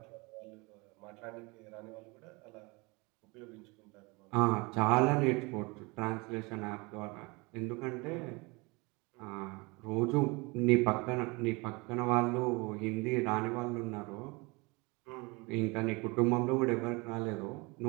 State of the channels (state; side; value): quieter; left; 26.5 dB